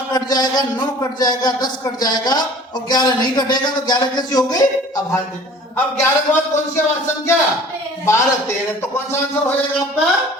कट जाएगा, 9 कट जाएगा, 10 कट जाएगा, और 11 नहीं कटेगा। तो 11 कैसी हो गई? अभाज्य। अब 11 के बाद कौन सी अभाज्य संख्या? 12, 13। तो कौन सा आंसर हो जाएगा आपका?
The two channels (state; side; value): normal; both; correlation 0.47